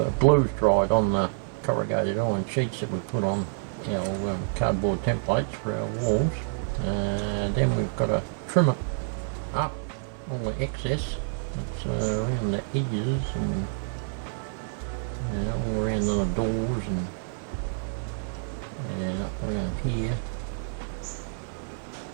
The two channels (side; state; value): left; silent; 59 dB below the other